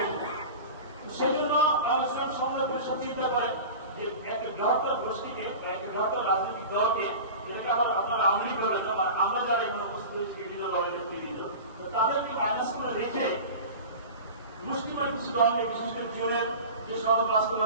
সেই জন্য ইসলাম সমন্বয় পরিষদ চিন্তা করে যে একটা বৃহত্তর গোষ্ঠীকে বা একটা বৃহত্তর রাজনৈতিক দলকে, যেটাকে আবার আপনারা আওয়ামী লীগ বলেন বা আমরা যারা এখানে উপস্থিত হয়েছি বিভিন্ন দলের নেতৃবৃন্দ, তো তাদেরকে মাইনাস করে রেখে মুসলিমের কিছু দলকে, বিশেষ করে জোরের যে সড়ক বাস্তব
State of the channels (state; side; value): inverted; both; correlation -0.34